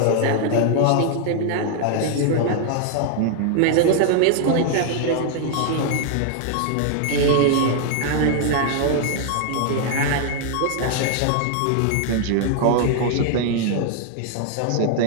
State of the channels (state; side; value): different; both; correlation 0.00